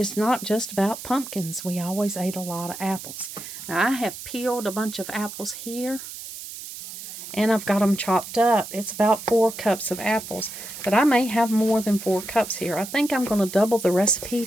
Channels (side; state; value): right; noise; hiss, 11 dB below the sound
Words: not just about pumpkins. We always ate a lot of apples. Now, I have peeled a bunch of apples here, and I've got them chopped up. It's about 4 cups of apples, but I may have more than 4 cups here. I think I'm going to double the recipe